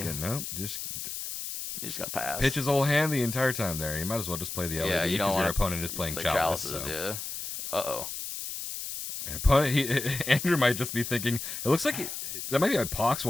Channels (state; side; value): noise; left; hiss, 6 dB below the sound